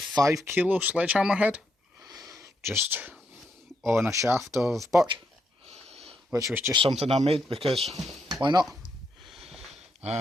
kilo sledgehammer head, just on a shaft of birch, which was just something I made because why not?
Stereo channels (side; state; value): both; normal; correlation 0.79